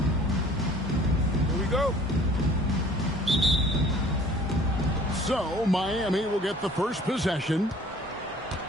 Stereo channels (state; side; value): normal; both; correlation 0.51